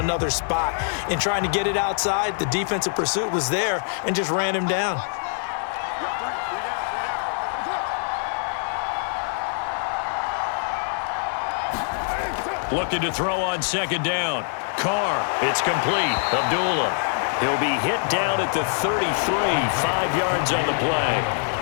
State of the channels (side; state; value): right; silent; 62 dB below the other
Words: spot. In trying to get it outside, the defensive pursuit was there and just ran him down. Looking to throw on 2nd down. Carr, it's complete. Abdullah. He'll be hit down at the 33, 5 yards on the play.